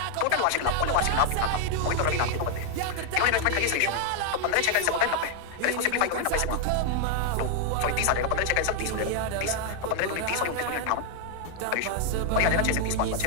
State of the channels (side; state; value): both; different; correlation 0.00